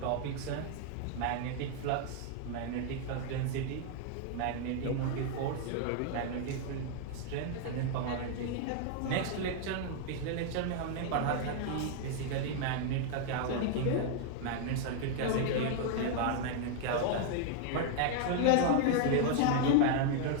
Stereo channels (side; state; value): both; different; correlation 0.00